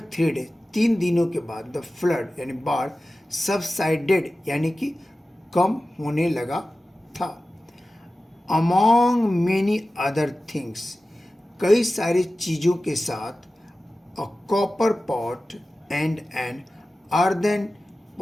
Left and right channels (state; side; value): normal; both; correlation 0.95